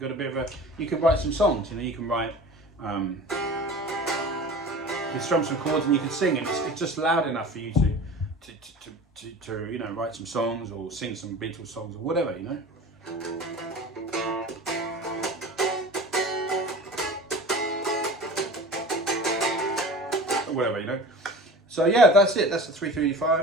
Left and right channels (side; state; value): both; normal; correlation 0.37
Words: a bit of a, you can write some songs, you know, you can write, you can strum some chords and you can sing, and it's just loud enough for you to you know, write some songs or sing some Beatles songs or whatever, you know. Or whatever, you know. So yeah, that's it. That's the